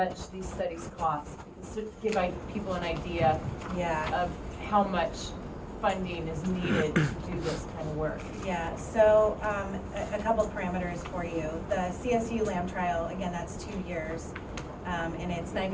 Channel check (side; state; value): both; identical; correlation 1.00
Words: these studies cost, because to give people an idea Yeah. of how much funding is needed to do this kind of work. Yeah, so a couple parameters for you. The CSU LAM trial, again, that's 2 years, and it's